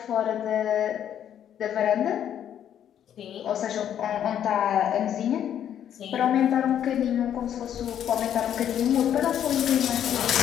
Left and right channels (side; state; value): right; quieter; 9.9 dB